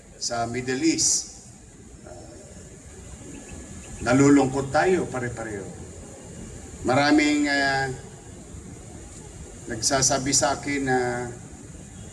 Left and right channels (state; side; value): identical; both; correlation 1.00